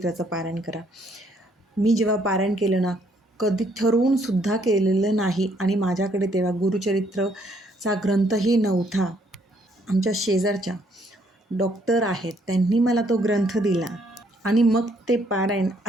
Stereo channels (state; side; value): normal; both; correlation 0.68